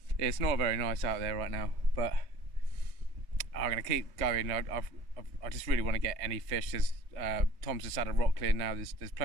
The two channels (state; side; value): late; left; 3.1 ms